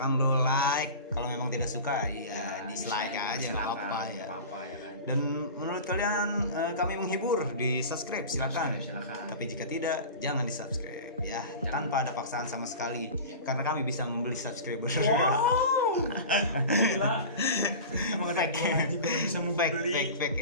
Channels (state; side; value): inverted; both; correlation -0.33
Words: lo like. Kalau memang tidak suka, ya dislike aja nggak apa-apa ya. Apa ya kan. Dan menurut kalian kami menghibur, di subscribe silakan. Silakan. Tapi jika tidak, jangan di subscribe ya, tanpa ada paksaan sama sekali. Karena kami bisa membeli subscriber. Wow. Gila. Emang ada Fake. dua anjing kalau bisa mau beli. fake